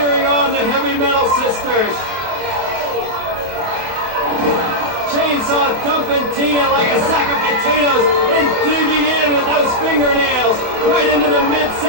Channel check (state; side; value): late; left; 27 ms